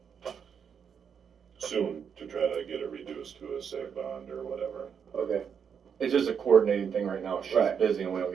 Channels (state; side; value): quieter; left; 7.2 dB